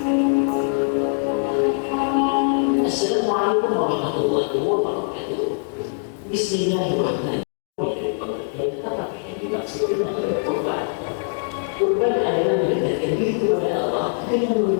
Assalamualaikum warahmatullahi wabarakatuh. Bismillahirrahmanirrahim. Dan apa yang dimaksudkan oleh kurban? Kurban adalah mendekatkan diri kepada Allah dengan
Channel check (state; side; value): silent; right; 64 dB below the other